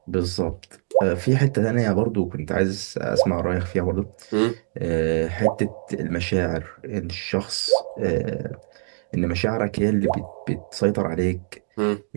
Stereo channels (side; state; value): left; silent; 62 dB below the other